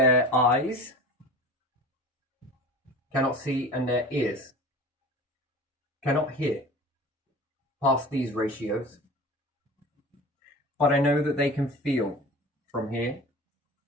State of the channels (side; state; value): both; normal; correlation 0.37